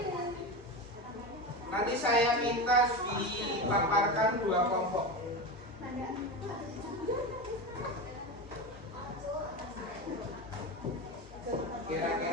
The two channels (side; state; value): both; normal; correlation 0.22